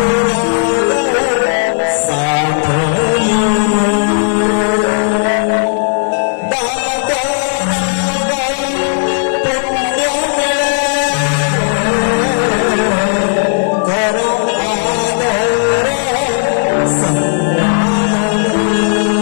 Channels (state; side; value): silent; right; digital silence